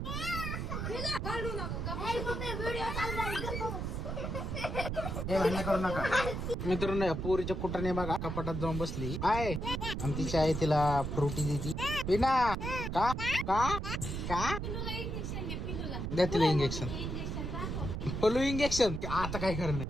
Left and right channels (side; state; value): right; noise; rumble, 3 dB below the sound